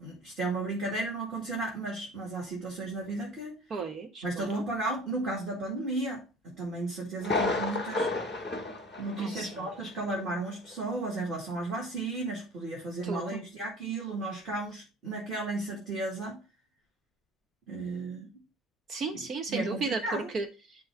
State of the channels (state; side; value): normal; both; correlation 0.44